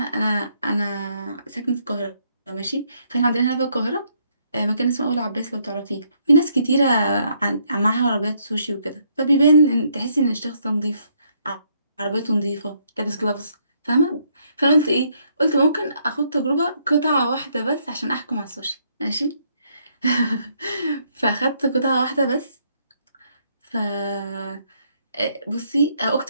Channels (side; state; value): both; inverted; correlation -0.71